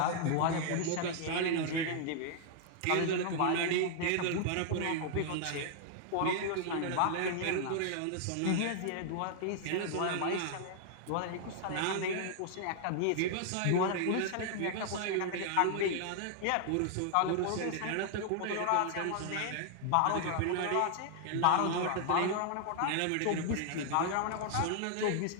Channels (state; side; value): different; both; correlation -0.01